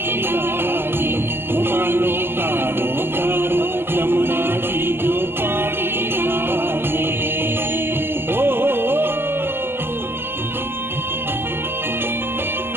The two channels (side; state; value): left; late; 0.11 ms